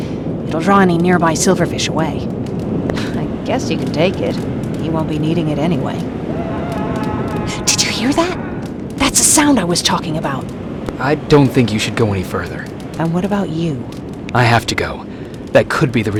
It'll draw any nearby silverfish away. I guess you can take it. He won't be needing it anyway. Did you hear that? That's the sound I was talking about. I don't think you should go any further. And what about you? I have to go. That could be the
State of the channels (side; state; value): both; identical; correlation 1.00